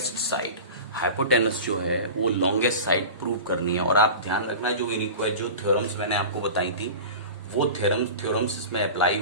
side. Hypotenuse जो है वो लॉन्गेस्ट साइड प्रूव करनी है। और आप ध्यान रखना, जो जो थ्योरम्स मैंने आपको बताई थी वो थ्योरम्स इसमें अप्लाई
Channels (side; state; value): both; inverted; correlation -0.33